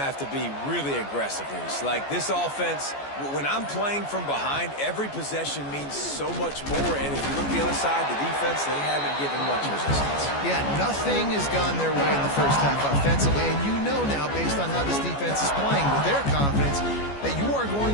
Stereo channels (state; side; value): late; right; 14 ms